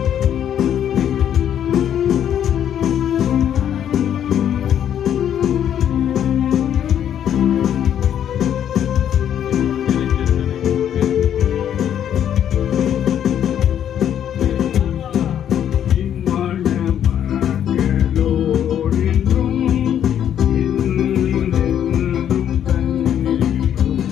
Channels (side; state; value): right; quieter; 9.8 dB